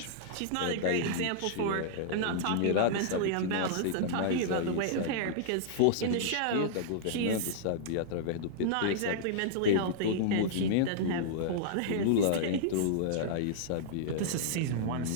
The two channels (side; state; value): both; different; correlation -0.02